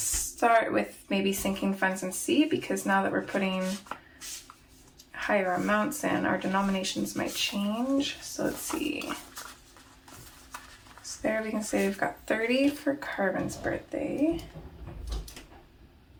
with maybe sinking funds and see, because now that we're putting higher amounts in, our denominations might change. So let's see. So there we can say we've got 30 for Carbon's birthday.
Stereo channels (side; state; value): both; identical; correlation 1.00